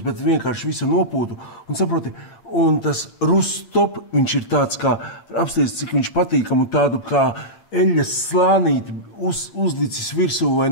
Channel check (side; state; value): right; late; 9.0 ms